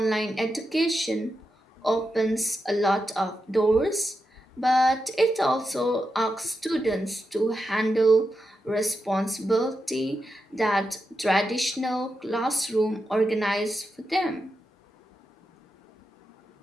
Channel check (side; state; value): both; normal; correlation 0.87